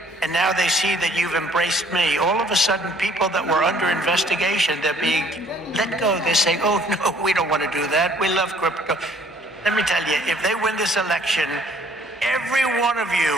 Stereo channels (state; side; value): normal; both; correlation 0.59